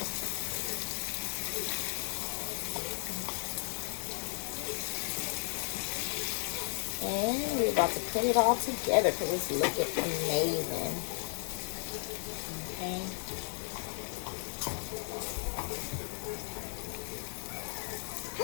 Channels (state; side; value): silent; right; 55 dB below the other